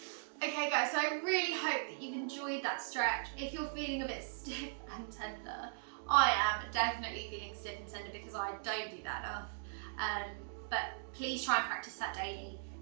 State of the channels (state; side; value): silent; left; digital silence